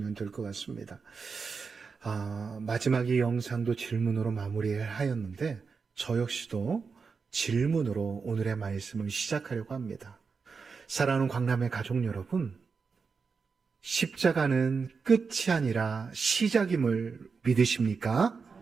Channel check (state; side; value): quieter; left; 5.2 dB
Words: 될 것 같습니다. 마지막 이 영상도 질문으로 마무리하였는데 저 역시도 질문으로 오늘의 말씀을 시작하려고 합니다. 사랑하는 광남의 가족 여러분, 십자가는 끝이 아니라 시작임을 믿으십니까?